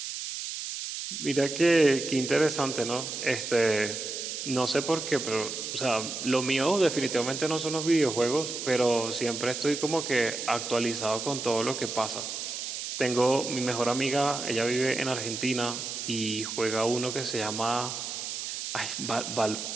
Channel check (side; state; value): right; noise; hiss, 5 dB below the sound